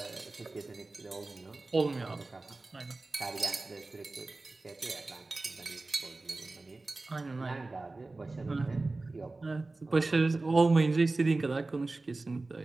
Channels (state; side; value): quieter; left; 3.3 dB